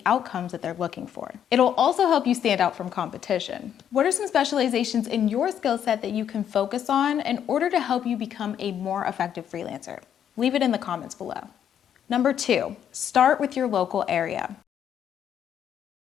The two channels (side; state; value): right; quieter; 9.3 dB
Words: outcomes that they're looking for. It'll also help you stand out from competition. What are some specializations in your skill set that you can focus on in order to help you become a more effective freelancer? Leave it in the comments below. Number 2, start with your local area.